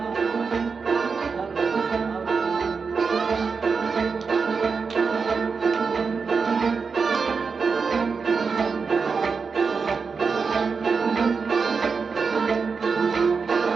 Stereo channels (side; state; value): left; quieter; 5.2 dB